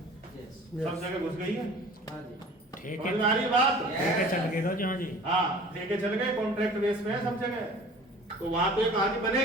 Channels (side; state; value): both; normal; correlation 0.45